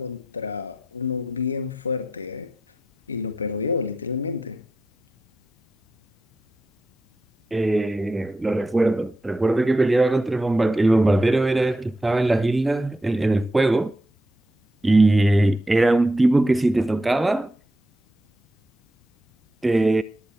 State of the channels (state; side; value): normal; both; correlation 0.87